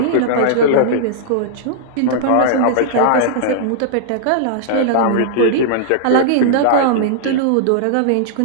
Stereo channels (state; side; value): different; both; correlation -0.02